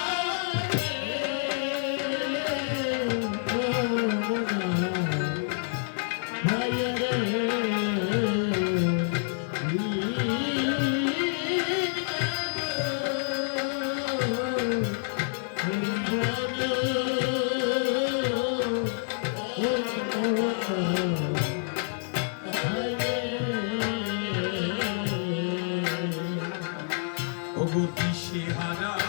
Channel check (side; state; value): right; silent; 59 dB below the other